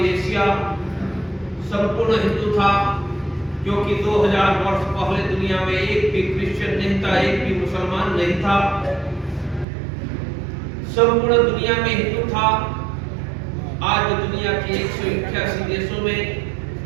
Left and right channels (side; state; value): left; drops out; at 9.7 s